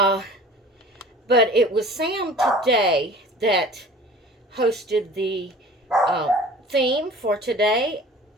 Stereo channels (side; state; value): both; normal; correlation 0.44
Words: it was Sam today that hosted the theme for today,